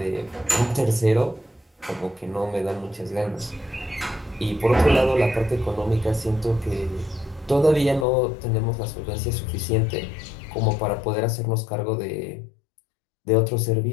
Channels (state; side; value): drops out; right; at 8.1 s